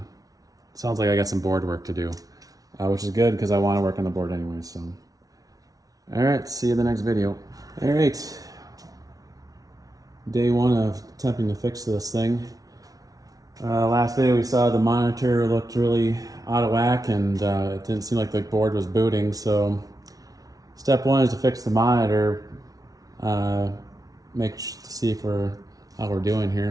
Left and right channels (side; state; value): left; late; 0.18 ms